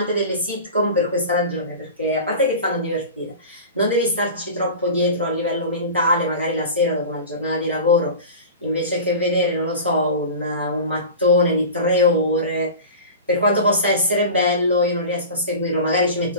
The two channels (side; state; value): both; inverted; correlation -0.33